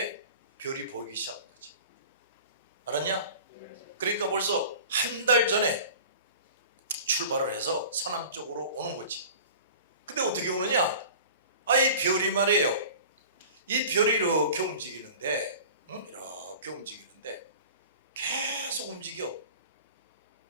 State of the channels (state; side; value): inverted; both; correlation -0.40